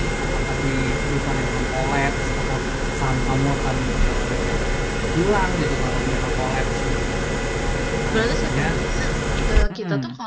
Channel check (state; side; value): identical; both; correlation 1.00